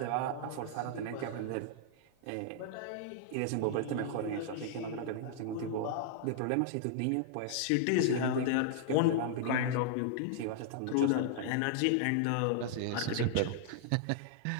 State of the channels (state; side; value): different; both; correlation -0.01